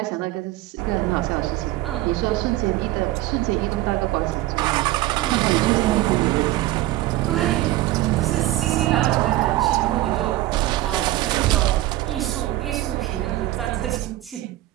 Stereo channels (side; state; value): left; quieter; 16.4 dB